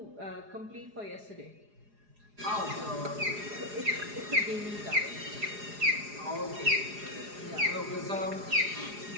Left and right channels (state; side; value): late; left; 4.9 ms